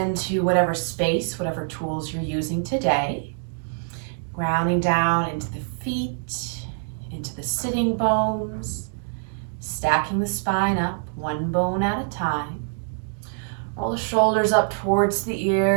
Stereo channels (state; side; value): silent; left; digital silence